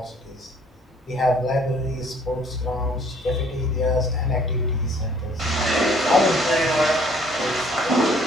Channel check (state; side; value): normal; both; correlation 0.59